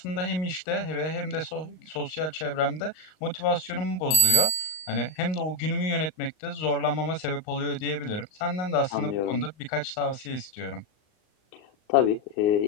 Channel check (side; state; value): right; late; 38 ms